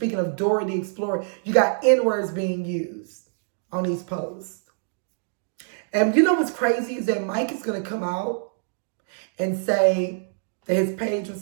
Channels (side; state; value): left; silent; digital silence